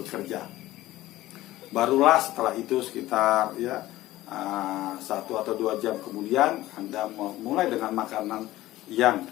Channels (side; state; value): right; quieter; 16.2 dB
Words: Barulah setelah itu sekitar, ya, 1 atau 2 jam kemudian Anda mulai dengan makanan yang